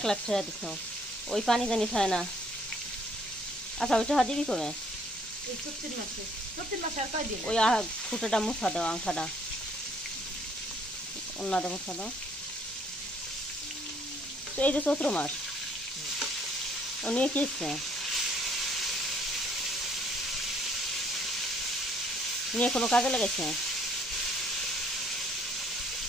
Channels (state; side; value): noise; right; hum, 30 dB below the sound